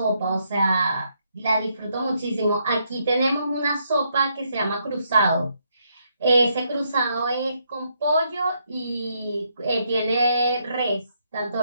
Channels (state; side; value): inverted; both; correlation -0.76